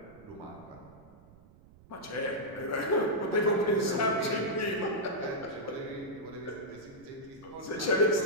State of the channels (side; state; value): right; noise; rumble, 23 dB below the sound